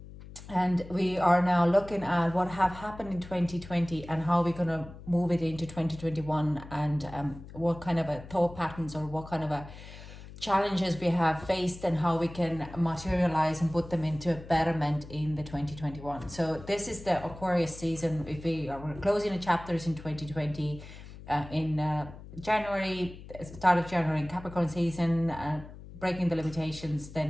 And we are now looking at what have happened in 2020 and how we're going to move it into 2021, and what kind of a thought patterns or what kind of a challenges we have faced and how we can materialize and put them into a betterment in the 2021. So this is the Aquarius season. If we're closing the chapters in 2020 in January, start of January in Capricorn season, breaking the limitations,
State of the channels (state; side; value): noise; left; hum, 15 dB below the sound